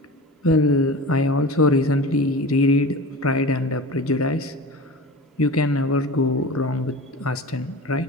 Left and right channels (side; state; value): both; normal; correlation 0.33